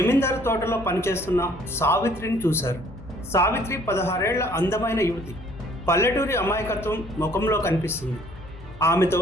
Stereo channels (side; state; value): both; normal; correlation 0.59